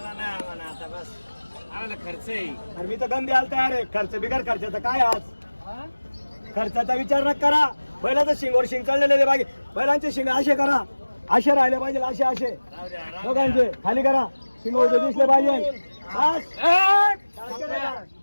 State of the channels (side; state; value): both; inverted; correlation -1.00